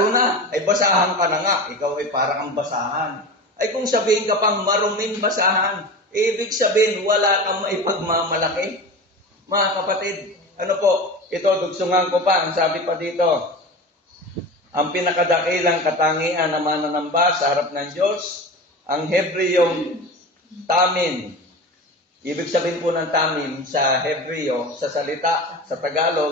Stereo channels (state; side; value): normal; both; correlation 0.30